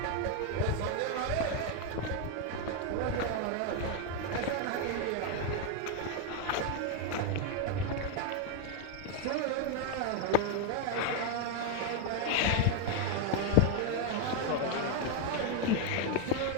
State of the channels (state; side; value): different; both; correlation 0.01